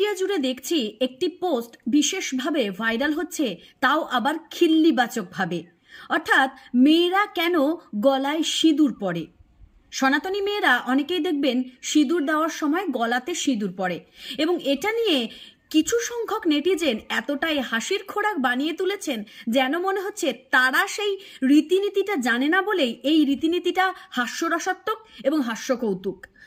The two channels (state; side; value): identical; both; correlation 1.00